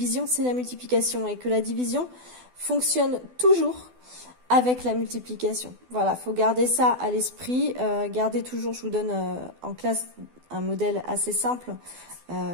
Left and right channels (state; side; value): late; left; 12 ms